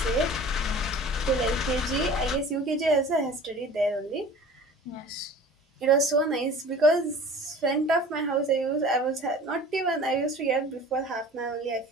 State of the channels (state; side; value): normal; both; correlation 0.43